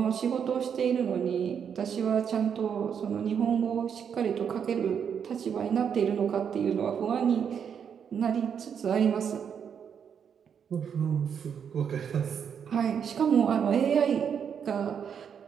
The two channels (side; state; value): left; quieter; 7.6 dB